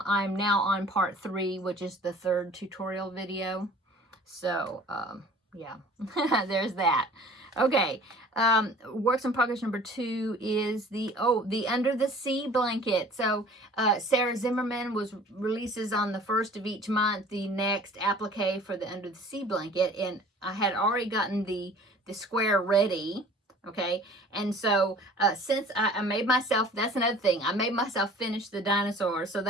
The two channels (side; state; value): both; normal; correlation 0.48